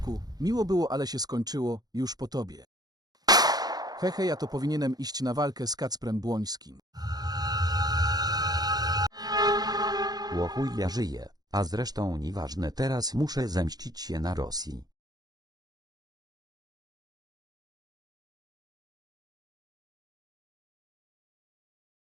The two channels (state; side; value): late; left; 0.19 ms